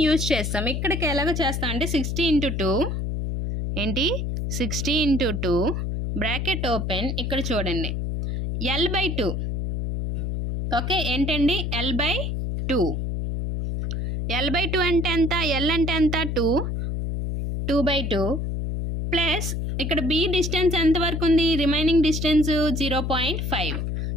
యూజ్ చేస్తాం. ఇక్కడికి ఎలాగో చేస్తాం అంటే 60 × 2 ఏంటి 60 × 2 బ్రాకెట్ ఓపెన్ ఇక్కడ చూడండి L/2 ఓకే ఏంటండి L/2 L/2 అంటే ఎంత L అంటే ఎంత 2/2 ప్లస్ ఇక్కడ బి డిస్టెన్స్ ఎంత వరకు ఉంది రిమైనింగ్ డిస్టెన్స్ 0.5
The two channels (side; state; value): left; noise; hum, 2 dB below the sound